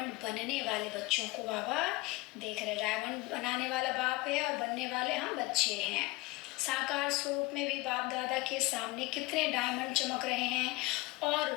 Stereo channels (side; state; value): right; quieter; 21.6 dB